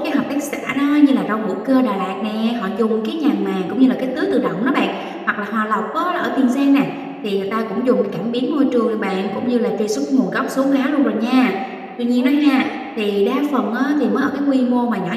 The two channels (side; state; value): both; identical; correlation 1.00